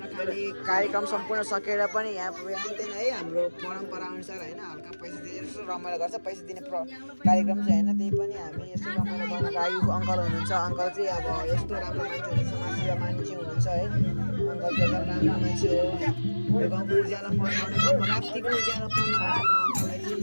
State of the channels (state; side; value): inverted; both; correlation -1.00